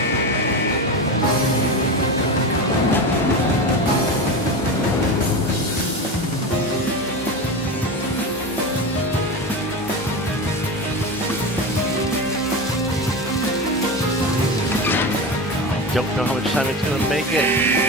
Don't know how much time it's going to make it.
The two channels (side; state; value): both; normal; correlation 0.23